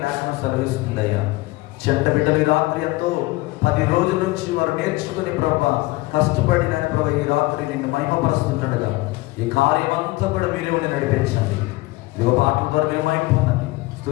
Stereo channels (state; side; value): quieter; right; 20.7 dB